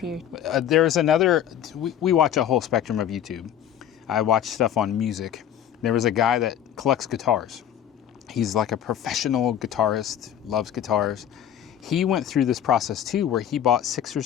There's another, we watch a whole spectrum of YouTube. I watch stuff on music. There was a guy that collects guitars. He's like a professional guitarist, loves guitars. He went through this process too, where he bought 6 or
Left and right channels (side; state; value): right; quieter; 10.1 dB